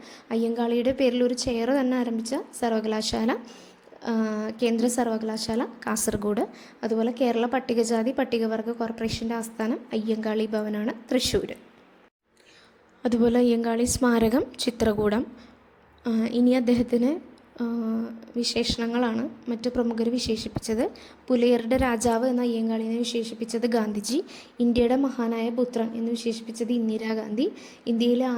അയ്യങ്കാളിയുടെ പേരിൽ ഒരു ചെയർ തന്നെ ആരംഭിച്ച സർവകലാശാല കേന്ദ്ര സർവകലാശാല കാസർഗോഡ്. അതുപോലെ കേരള പട്ടികജാതി പട്ടികവർഗ കോർപ്പറേഷൻ്റെ ആസ്ഥാനം അയ്യങ്കാളി ഭവനാണ്, തൃശ്ശൂർ. അതുപോലെ അയ്യങ്കാളി സ്മാരകം ചിത്രകൂടം. ഇനി അദ്ദേഹത്തിന് വിശേഷണങ്ങളാണ് മറ്റു പ്രമുഖർ വിശേഷിപ്പിച്ചത്. പുലയരുടെ രാജാവ് എന്ന അയ്യങ്കാളിനെ വിശേഷിപ്പിച്ചത് ഗാന്ധിജി. ഇന്ത്യയുടെ മഹാനായ പുത്രൻ എന്ന് വിശേഷിപ്പിച്ചത് ഇന്ദിരാഗാന്ധി. ഇന്ത്യയിലെ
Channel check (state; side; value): identical; both; correlation 1.00